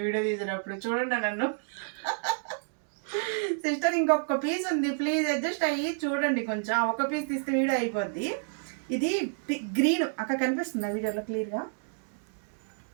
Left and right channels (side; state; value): left; silent; digital silence